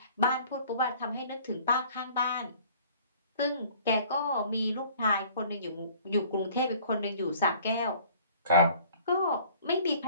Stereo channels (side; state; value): both; inverted; correlation -0.52